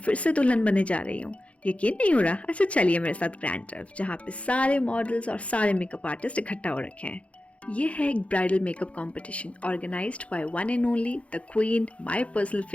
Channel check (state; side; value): late; right; 0.063 ms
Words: से दुल्हन बनने जा रही हूँ। यकीन नहीं हो रहा? अच्छा चलिए मेरे साथ ग्रैंड टर्फ, जहाँ पे सारे मॉडल्स और सारे मेकअप आर्टिस्ट इकट्ठा हो रखे हैं। ये है एक bridal makeup competition organised by one and only the queen, my personal